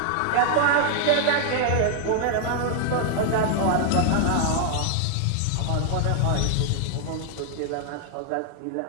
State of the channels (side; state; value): both; different; correlation 0.00